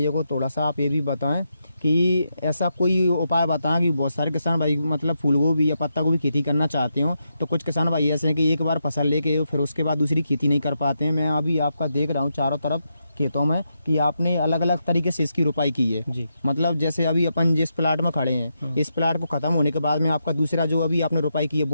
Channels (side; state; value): both; inverted; correlation -0.84